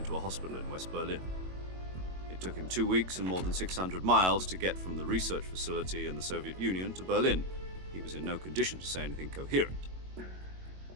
a hospital in West Berlin. It took him 2 weeks and more than 600 miles to get from the research facility in the Soviet Union to Berlin. He was in no condition to say anything coherent.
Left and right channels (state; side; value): late; left; 22 ms